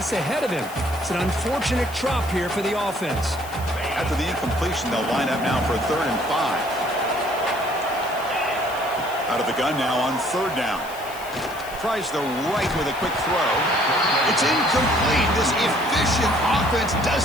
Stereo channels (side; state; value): left; noise; hiss, 17 dB below the sound